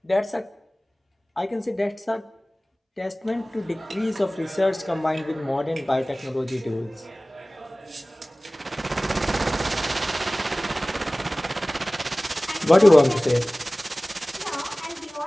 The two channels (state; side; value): normal; both; correlation 0.98